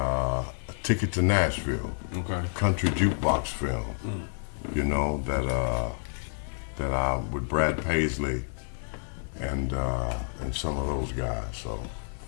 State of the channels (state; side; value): silent; right; digital silence